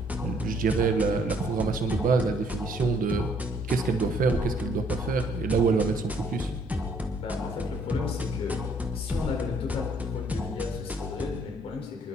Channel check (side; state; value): both; normal; correlation 0.64